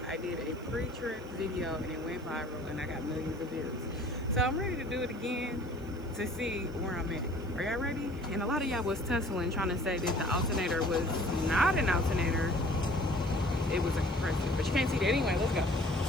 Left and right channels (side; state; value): left; noise; hiss, 28 dB below the sound